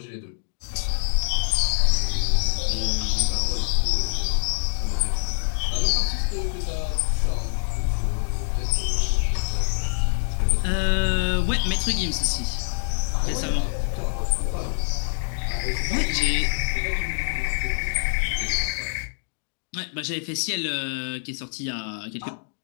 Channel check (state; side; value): silent; right; digital silence